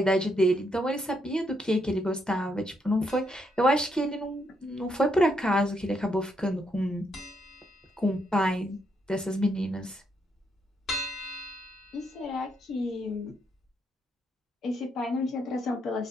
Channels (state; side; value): normal; both; correlation 0.76